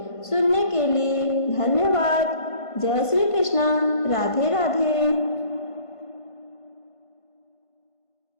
सुनने के लिए धन्यवाद। जय श्री कृष्ण। राधे राधे।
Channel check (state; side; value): late; right; 1.5 ms